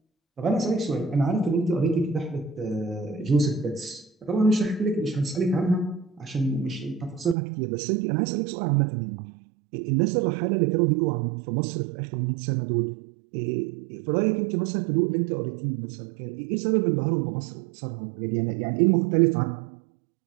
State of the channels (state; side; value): drops out; left; at 7.4 s